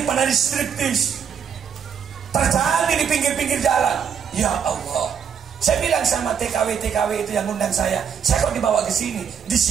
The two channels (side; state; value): left; quieter; 7.3 dB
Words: striptease terjadi di pinggir-pinggir jalan. Ya Allah. Saya bilang sama TKW itu yang undang saya kok dibawa ke sini? Di